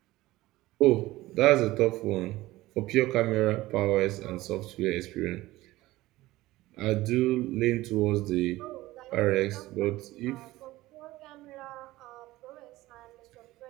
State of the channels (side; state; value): left; quieter; 17.8 dB